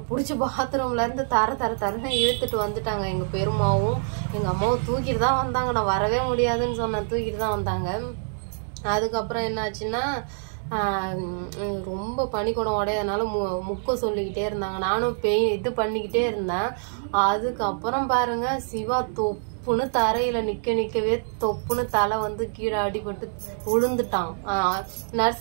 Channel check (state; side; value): silent; left; digital silence